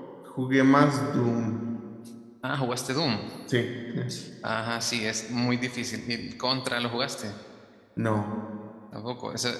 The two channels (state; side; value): identical; both; correlation 1.00